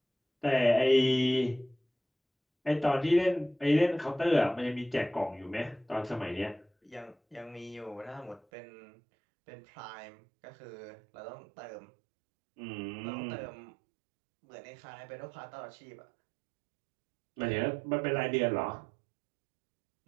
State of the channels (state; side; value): drops out; left; at 8.4 s